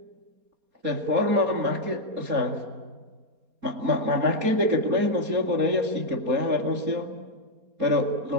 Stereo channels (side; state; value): left; late; 4.3 ms